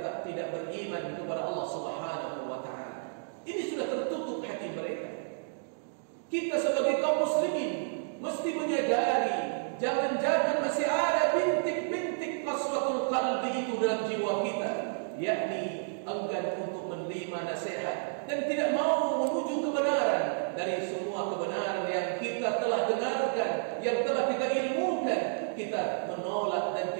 tidak beriman kepada Allah Subhanahu wa Ta'ala. Ini sudah tertutup hati mereka. Kita sebagai kaum muslimin mesti menyadari jangan-jangan masih ada bintik-bintik qaswatul qalbi itu dalam jiwa kita, yakni enggan untuk menerima nasihat dan tidak mau menuju kebenaran. Dari semua kebenaran yang kita telah dengarkan, yang telah kita ilmukan, kita menolak dan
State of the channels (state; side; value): silent; left; digital silence